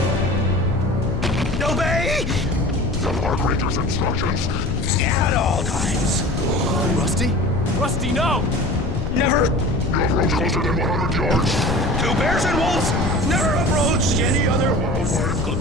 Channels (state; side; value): noise; left; rumble, 3 dB below the sound